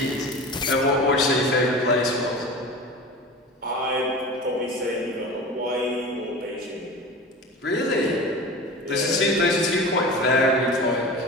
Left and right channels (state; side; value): normal; both; correlation 0.33